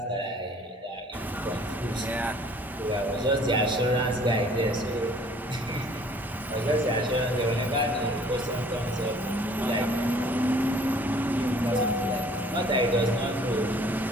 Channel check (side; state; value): both; normal; correlation 0.55